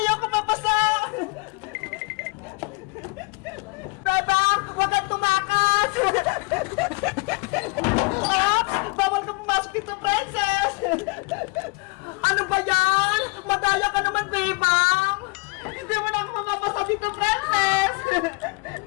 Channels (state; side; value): quieter; right; 28.7 dB